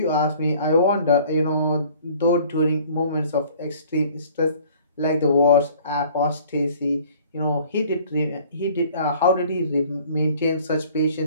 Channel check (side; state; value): both; inverted; correlation -0.52